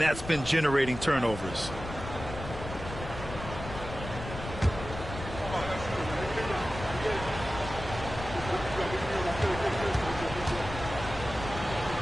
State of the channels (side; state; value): left; noise; rumble, 10 dB below the sound